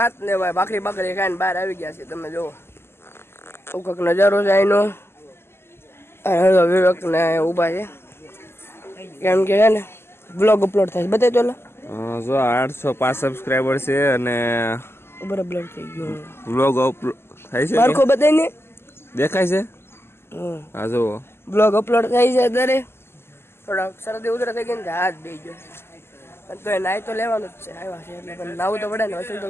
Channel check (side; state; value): right; late; 0.12 ms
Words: ને ભાઈ ભાખરી બાખરી ખાઈને બહાર આવી ગયા છે તમે જુઓ કંઈક નજારો છે અહીંનો વિવેક ને ઊભા છે કેમ કે છે ને બ્લોગ અપલોડ થાય બતાવી તો જો 805 સબસ્ક્રાઇબર છે અને બરાબર થઈ ગયો બ્લોગ અપલોડ થાય છે મારખો બતાવીને દેખાય છે હા જો બ્લોગ અપલોડ થાય છે અત્યારે થોડાક શરદી ઉધરા થઈ ગઈ ને હાથ દઈ ગયો તો એ નાઈ તો લેવાનું જ છે આવ્યા છે એટલે પણ નાવું તો પડે ને વસૂલ તો